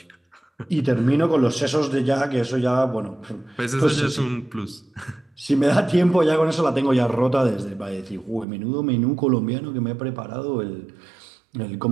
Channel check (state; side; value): drops out; left; at 8.5 s